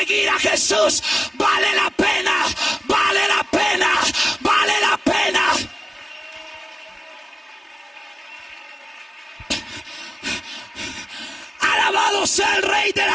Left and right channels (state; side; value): normal; both; correlation 0.97